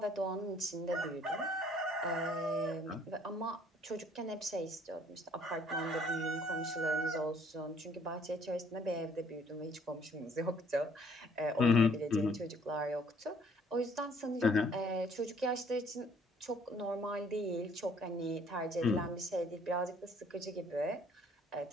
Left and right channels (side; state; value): both; normal; correlation 0.60